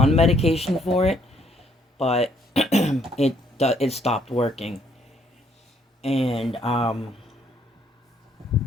medication for it, but it stopped working. And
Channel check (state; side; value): normal; both; correlation 0.67